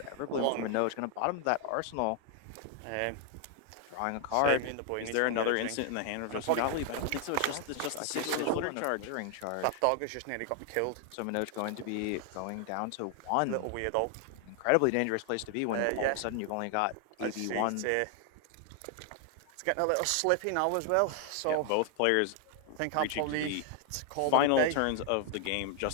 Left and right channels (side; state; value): both; different; correlation 0.00